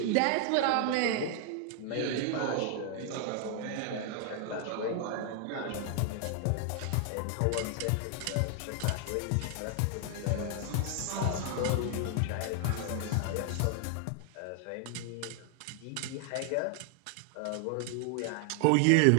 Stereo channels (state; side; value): different; both; correlation 0.00